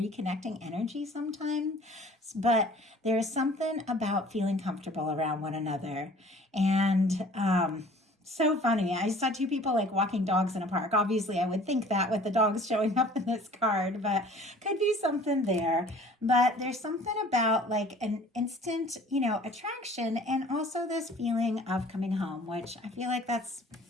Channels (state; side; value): normal; both; correlation 0.50